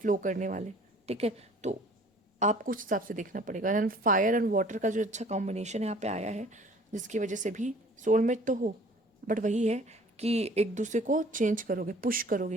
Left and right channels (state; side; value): normal; both; correlation 0.52